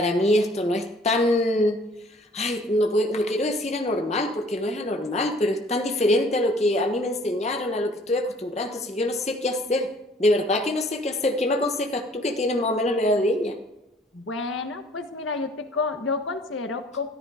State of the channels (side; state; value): both; normal; correlation 0.56